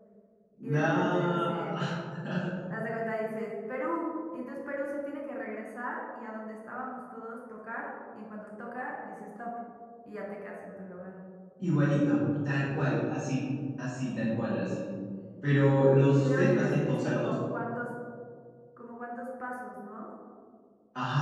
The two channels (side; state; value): both; identical; correlation 1.00